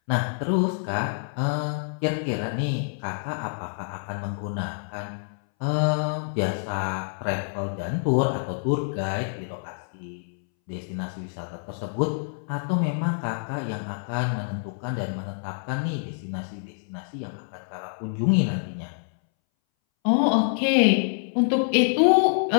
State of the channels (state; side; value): silent; right; 60 dB below the other